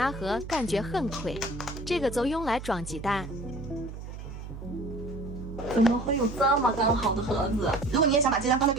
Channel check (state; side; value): noise; right; hum, 10 dB below the sound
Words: 盒感觉很亏，这个就用来装鸡蛋。怎么会有这么刚好的盒子？如果你也想把鸡蛋放在